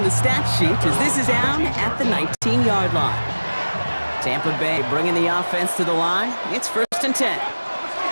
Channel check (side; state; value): both; inverted; correlation -1.00